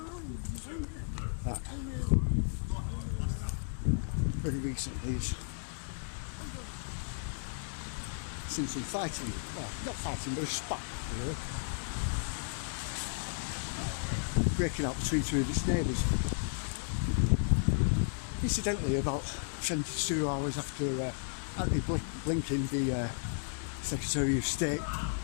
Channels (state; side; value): silent; right; digital silence